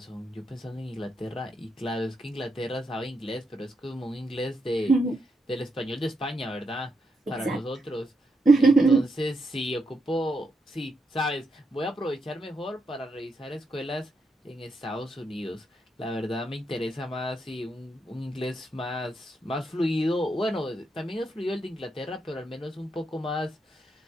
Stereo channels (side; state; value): both; normal; correlation 0.81